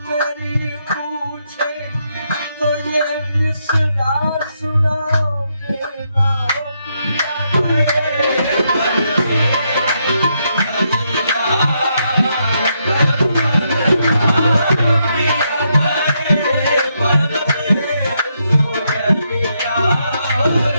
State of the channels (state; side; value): inverted; both; correlation -0.79